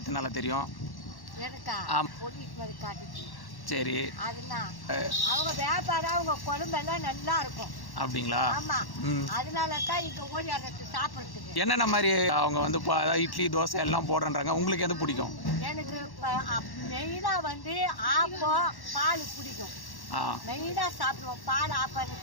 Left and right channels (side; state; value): right; late; 1.1 ms